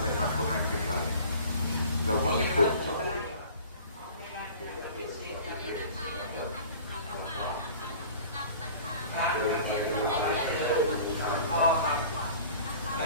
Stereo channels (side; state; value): both; inverted; correlation -0.44